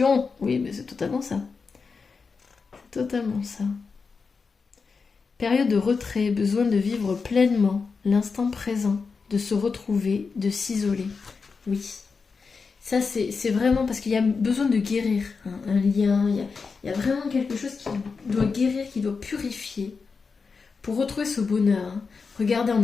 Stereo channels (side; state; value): right; quieter; 4.9 dB